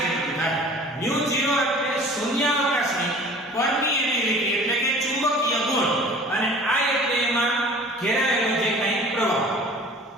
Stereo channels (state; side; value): normal; both; correlation 0.45